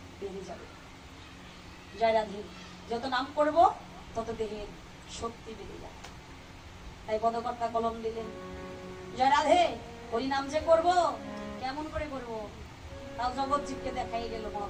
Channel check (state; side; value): identical; both; correlation 1.00